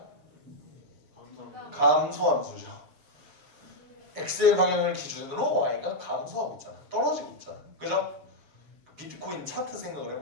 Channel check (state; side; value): late; left; 7.1 ms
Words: 감소함수죠. x의 방향을 기준으로 y가 감소하고 있잖아. 떨어지고 있잖아. 그죠? 비트코인 차트 생각을